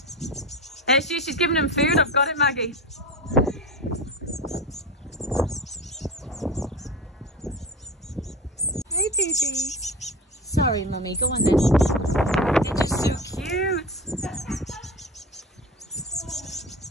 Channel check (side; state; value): both; normal; correlation 0.29